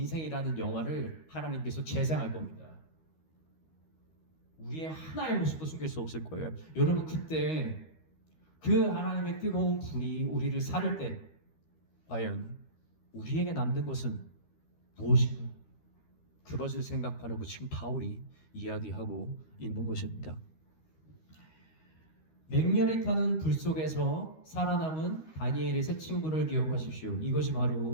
영화를 하나님께서 재생할 겁니다. 우리의 하나의 모습도 숨길 수 없을 거예요. 여러분 그때 그 하나님의 뜨거운 불이 우리를 사를 때 과연 우리에게 남는 것은 무엇인가? 그것을 생각하려고 지금 바울이 이야기하고 있는 것입니다. 맹렬히 타는 불 속에서 살아남은 다니엘의 세 친구를 기억하십시오. 이것이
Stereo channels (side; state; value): right; late; 13 ms